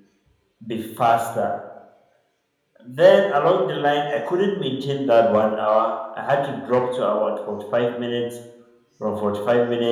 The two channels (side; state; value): both; identical; correlation 1.00